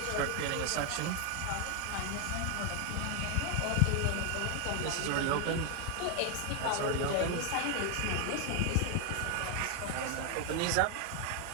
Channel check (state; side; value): different; both; correlation 0.01